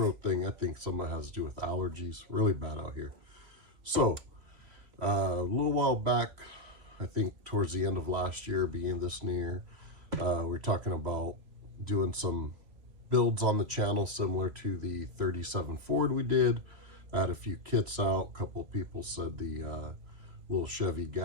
thing. I think some of it has to do with allergies. Really bad out here. So, a little while back, I think towards the end of last year, beginning this new year, we were talking about doing some builds on the channel similar to the 37 Ford we did. I had a few kits out. A couple of people said the little Chevy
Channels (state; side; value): late; left; 2.8 ms